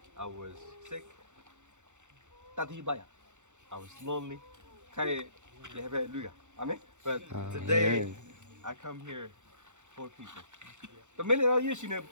I was sick. တတိပါရ I was lonely. ခိုင်ရပဲလူကအာမင် But today, I come here for people. တမင်းလည်းရရှိနေ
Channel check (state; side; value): late; left; 0.84 ms